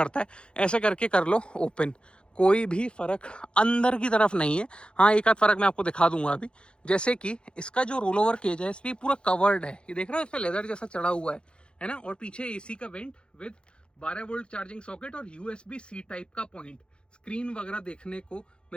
है। ऐसे करके कर लो ओपन, कोई भी फ़र्क अंदर की तरफ नहीं है। हाँ, एक आध फ़र्क मैं आपको दिखा दूंगा अभी। जैसे कि इसका जो रोल ओवर केज है, इस पर पूरा कवर्ड है, ये देख रहे हो, इस पर लेदर जैसा चढ़ा हुआ है ना। और पीछे AC का went with 12 volt charging socket और USB-C टाइप का पॉइंट। स्क्रीन वगैरह देखने को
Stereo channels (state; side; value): late; right; 0.054 ms